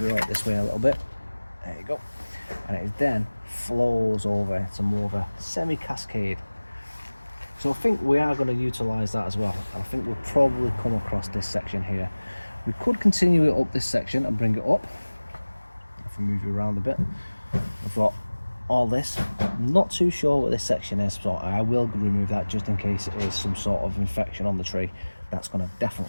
it right this way a little bit, there you go, and it then flows over to more of a semi-cascade. So I think we are going to utilise that as well. I think we'll probably come across this section here. We could continue it up this section and bring it up. If we move you around a bit, we've got all this. I'm not too sure what this section is, so I will remove that just in case it is some sort of infection on the tree. That's going to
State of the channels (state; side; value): inverted; both; correlation -1.00